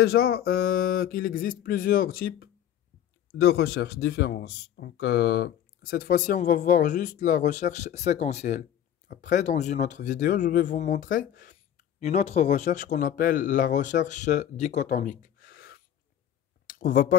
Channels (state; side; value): quieter; right; 10.5 dB